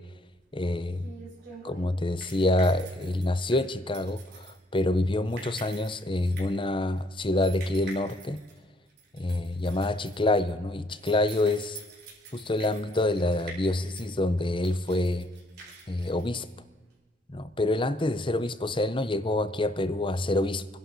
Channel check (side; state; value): both; normal; correlation 0.66